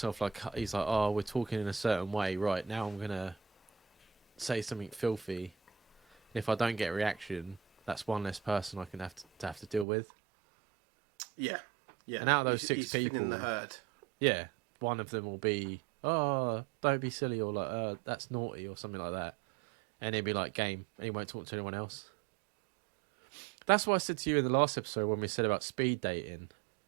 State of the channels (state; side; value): drops out; left; at 9.9 s